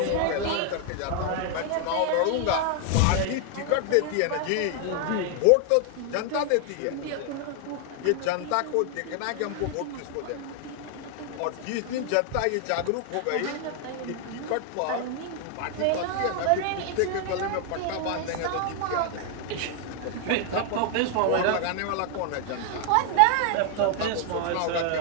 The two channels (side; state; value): both; different; correlation 0.00